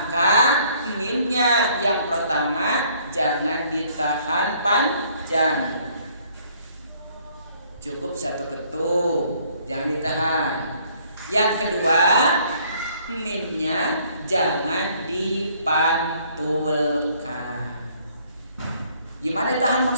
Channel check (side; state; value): both; inverted; correlation -0.62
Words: mimnya yang pertama jangan ditahan panjang, cukup satu ketuk, jangan ditahan. Yang kedua mimnya jangan dipantulkan. Gimana ditahan